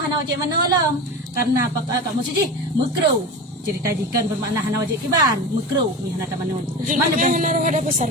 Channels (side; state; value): both; normal; correlation 0.28